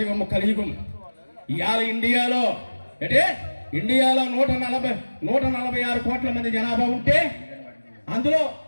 కలియుగం. ఇవాళ ఇండియాలో ఇండియాలో 146 కోట్ల మంది జనాభా ఉంటే అందులో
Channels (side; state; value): both; inverted; correlation -1.00